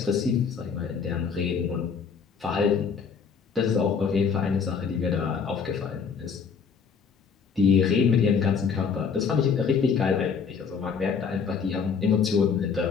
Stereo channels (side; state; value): right; quieter; 6.1 dB